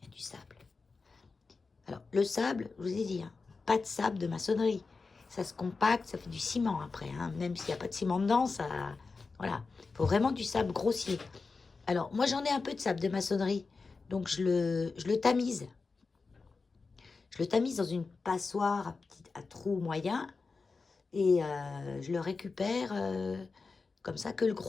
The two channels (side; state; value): right; quieter; 4.3 dB